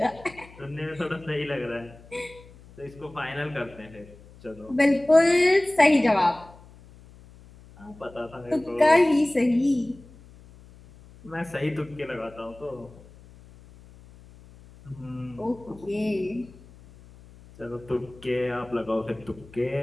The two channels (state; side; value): noise; left; hum, 22 dB below the sound